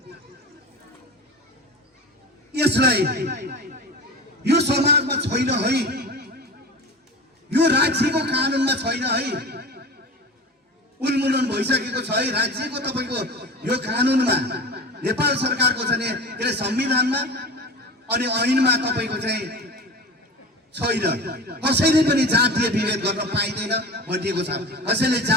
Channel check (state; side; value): normal; both; correlation 0.32